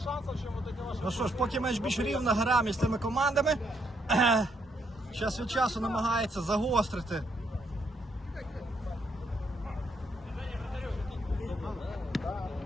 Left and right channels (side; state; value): both; normal; correlation 0.74